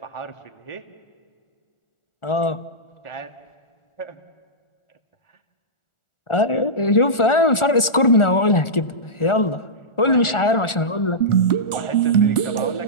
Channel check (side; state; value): right; late; 1.4 ms